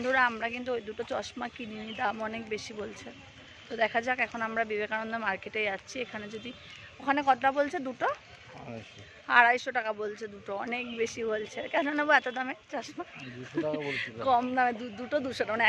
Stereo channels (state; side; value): identical; both; correlation 1.00